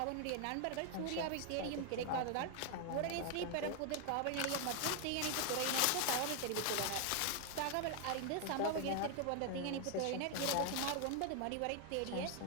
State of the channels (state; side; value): different; both; correlation 0.00